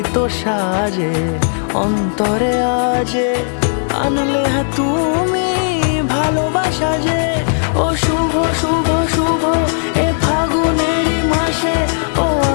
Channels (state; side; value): silent; right; digital silence